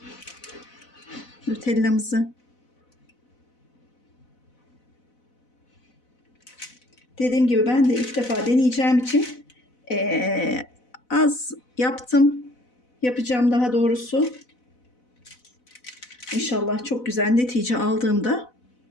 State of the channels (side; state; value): right; late; 4.0 ms